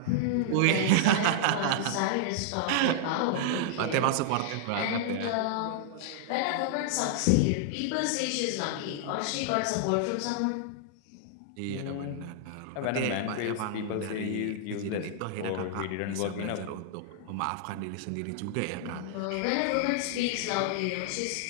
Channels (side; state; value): both; different; correlation -0.01